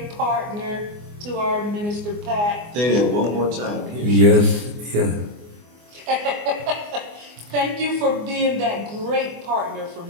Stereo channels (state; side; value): late; left; 24 ms